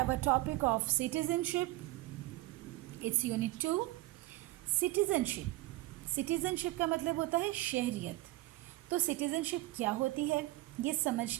a topic of citizenship. It's unit 2, citizenship. Citizenship का मतलब होता है शहरियत। तो citizenship क्या होती है ये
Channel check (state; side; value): quieter; left; 18.6 dB